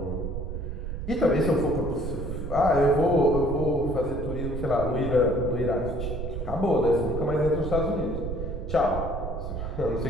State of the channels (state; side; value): noise; right; rumble, 5 dB below the sound